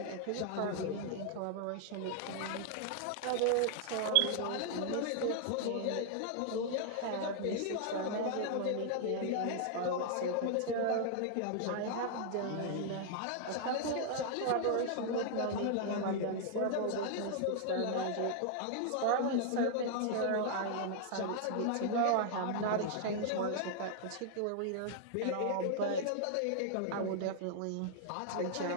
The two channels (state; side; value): different; both; correlation -0.01